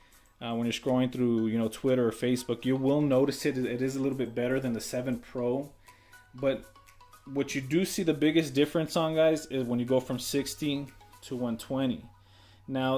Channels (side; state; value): both; identical; correlation 1.00